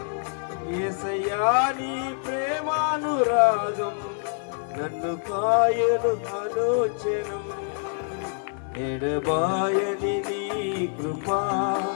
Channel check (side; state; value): right; silent; 58 dB below the other